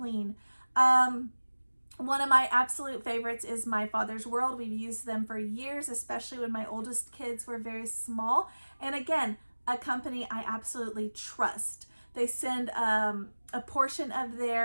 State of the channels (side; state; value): both; inverted; correlation -1.00